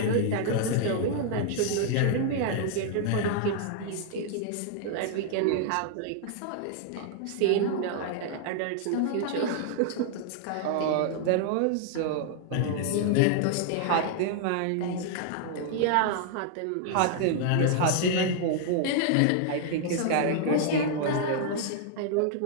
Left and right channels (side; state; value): both; different; correlation -0.01